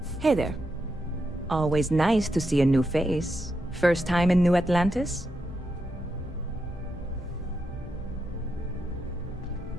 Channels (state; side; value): normal; both; correlation 0.84